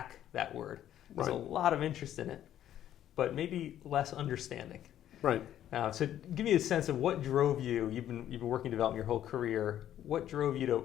that word. There's a lot of interest in it, but maybe less understanding. Right. So give me a sense of what drove you. You've been working in development your whole career. What drove you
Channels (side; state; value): right; quieter; 11.4 dB